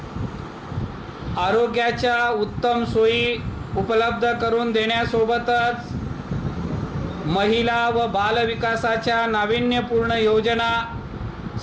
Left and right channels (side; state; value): both; identical; correlation 1.00